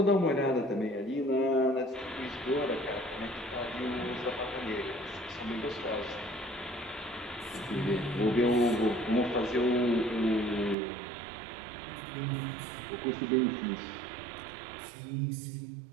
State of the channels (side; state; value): left; drops out; at 10.8 s